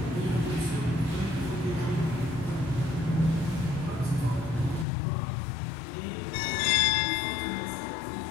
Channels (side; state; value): right; drops out; at 4.9 s